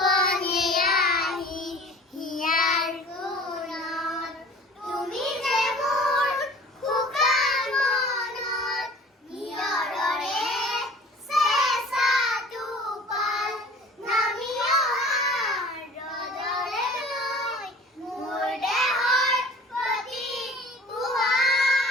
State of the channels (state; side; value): normal; both; correlation 0.46